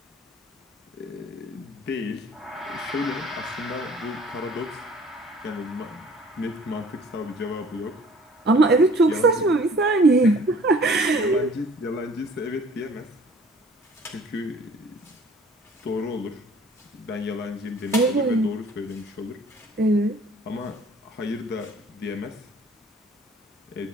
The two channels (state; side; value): normal; both; correlation 0.52